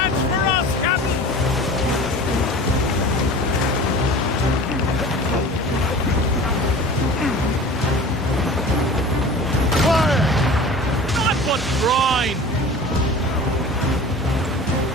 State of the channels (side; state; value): both; normal; correlation 0.39